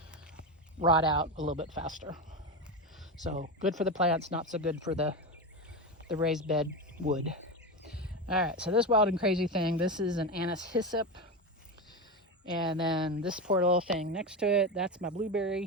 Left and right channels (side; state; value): both; normal; correlation 0.18